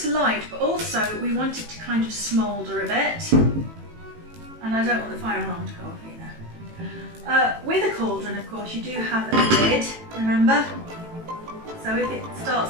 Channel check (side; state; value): left; late; 18 ms